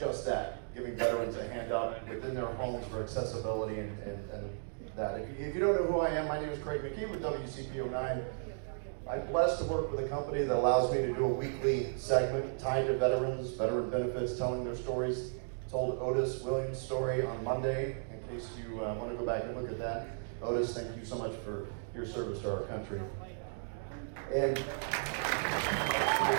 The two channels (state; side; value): silent; left; digital silence